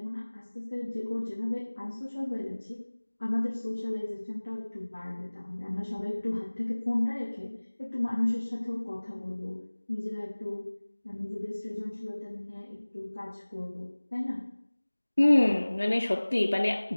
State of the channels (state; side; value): inverted; both; correlation -1.00